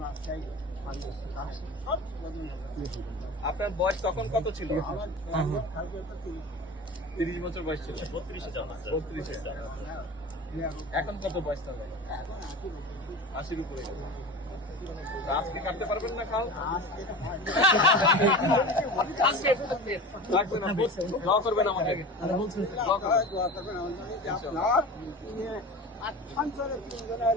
চাই সব আপনার বয়স তখন কত ছিল? আমার 30 বছর বয়স ছিল। 32 জন আছে। 32 এখন কত বয়স তাহলে? 80 উপরে গেছে। তা আজকে কাটতে পারবেন না খাল? রাখবেন আপনি, দোয়া করবেন আমাকে। দোয়া করবেন। সঞ্চরের 3 জনের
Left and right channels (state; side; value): normal; both; correlation 0.33